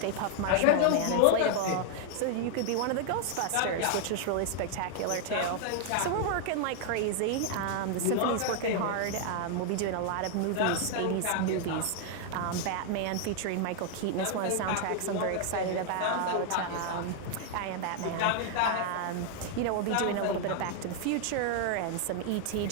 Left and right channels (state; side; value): different; both; correlation 0.00